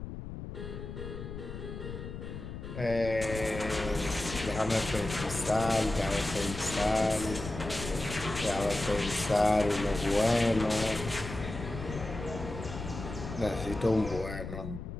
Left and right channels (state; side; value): noise; left; rumble, 8 dB below the sound